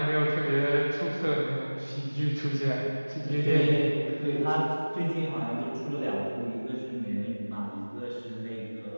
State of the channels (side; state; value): both; inverted; correlation -1.00